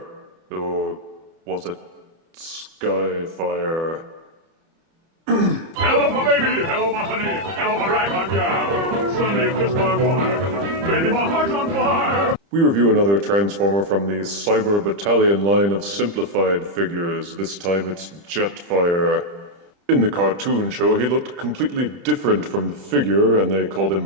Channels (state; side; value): late; left; 30 ms